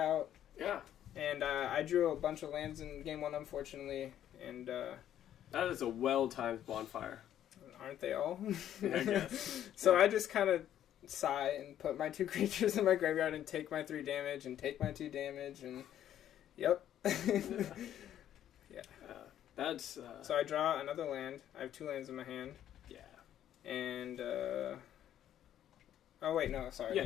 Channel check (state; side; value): quieter; right; 11.0 dB